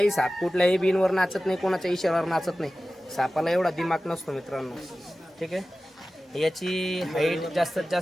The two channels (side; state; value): both; normal; correlation 0.96